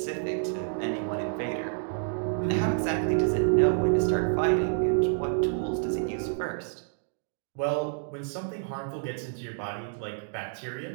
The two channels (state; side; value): silent; left; digital silence